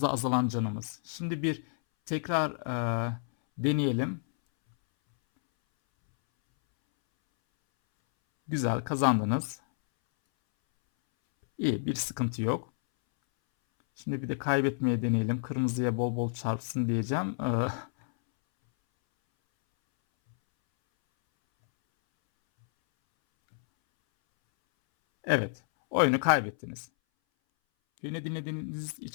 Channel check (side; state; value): right; silent; 58 dB below the other